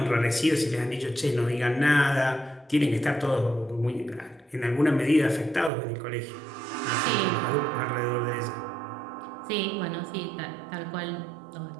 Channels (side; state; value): left; drops out; at 5.7 s